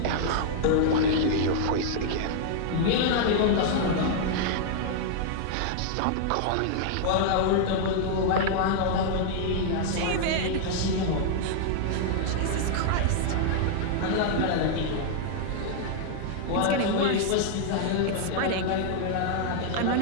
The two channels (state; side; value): different; both; correlation -0.01